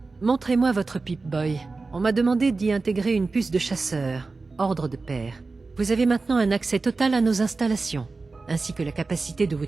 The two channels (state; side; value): quieter; left; 3.8 dB